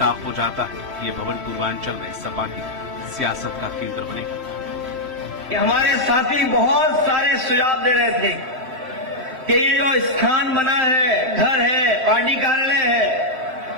हो जाता है कि ये भवन पूर्वांचल में सपा की सियासत का केंद्र बनेगा। हमारे साथी बहुत सारे सुझाव दे रहे थे कि ये जो स्थान बना है, घर है, पार्टी कार्यालय है,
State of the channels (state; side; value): late; left; 3.1 ms